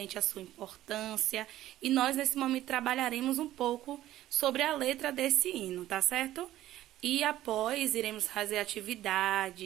à sua importância. E nós, nesse momento, trabalharemos um pouco sobre a letra desse hino, tá certo? E após, iremos fazer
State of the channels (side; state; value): left; quieter; 14.1 dB